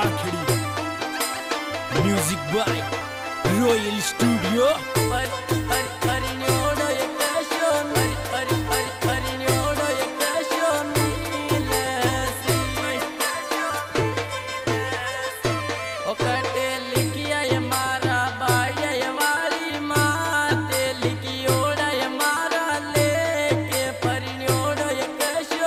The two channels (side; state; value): both; identical; correlation 1.00